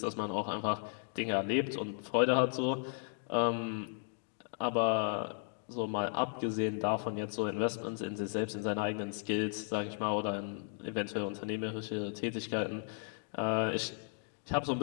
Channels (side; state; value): right; silent; 54 dB below the other